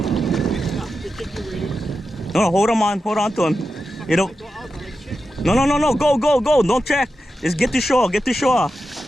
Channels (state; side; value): normal; both; correlation 0.90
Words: No, hold on to him. You know. No, go. Don't check. Just get to shore,